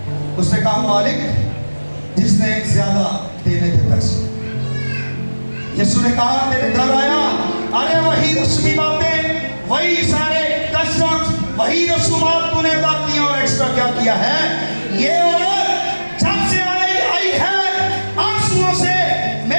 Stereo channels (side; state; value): both; inverted; correlation -1.00